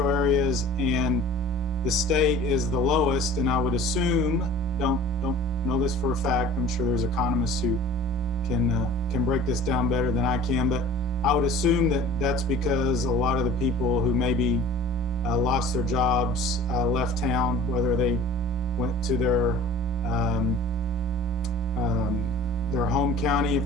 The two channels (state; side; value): normal; both; correlation 0.45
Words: areas and the state is the lowest, and I would assume, don't know this for a fact, I'm sure there's economists who can break this down better than I can, but I would assume that that's because a lot of the people who maybe lost their jobs, left town, whether they went to their home county if